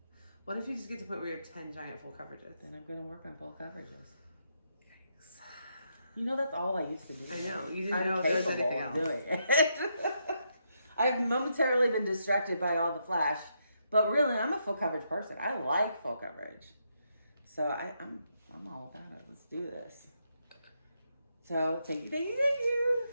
What if you just get to the point where you have 10 giant full coverages? Then I'm going to work on full coverages. Yikes. You know, that's all I used to do. I know. You didn't I'm know if there was capable anything of else. doing it. I've momentarily been distracted by all the flash. But really, I'm a full coverage person. I like full coverage. So I'm all about it. Let's do this. So thank you.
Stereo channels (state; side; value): inverted; both; correlation -0.79